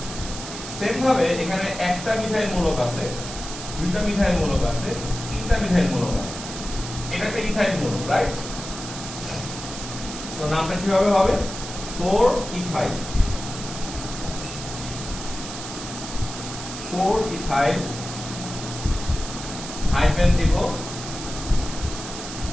সেম ভাবে এখানে একটা মিথাইল মূলক আছে, 2টা মিথাইল মূলক আছে, 3টা মিথাইল মূলক আছে, এটা একটা ইথাইল মূলক, রাইট? সো নামটা কিভাবে হবে? 4 ইথাইল, 4 ইথাইল হাইফেন দিব,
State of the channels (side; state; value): right; noise; hiss, 9 dB below the sound